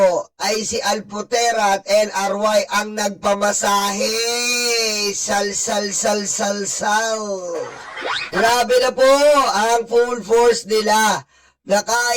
ay si Alpotera at LRY ang nagpamasahe. Sal. Grabe na po ang full force nila na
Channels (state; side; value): identical; both; correlation 1.00